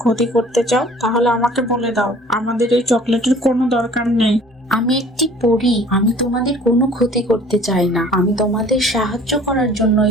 ক্ষতি করতে চাও তাহলে আমাকে বলে দাও, আমাদের এই চকলেটের কোনো দরকার নেই। আমি একটি পরী, আমি তোমাদের কোনো ক্ষতি করতে চাই না। আমি তোমাদের সাহায্য করার জন্য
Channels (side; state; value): both; normal; correlation 0.51